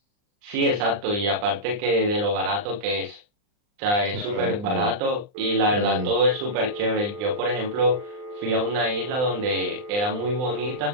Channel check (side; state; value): left; late; 39 ms